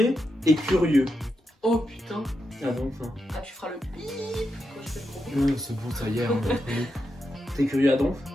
et curieux. Oh putain. Ah donc ça. Ah tu feras le bip quand je fais le gros. Non, c'est bon, ça y est. Hein, t'es curieux à donf?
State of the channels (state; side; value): normal; both; correlation 0.86